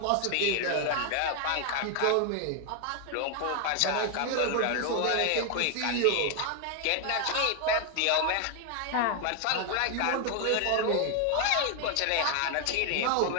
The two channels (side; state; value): both; different; correlation 0.00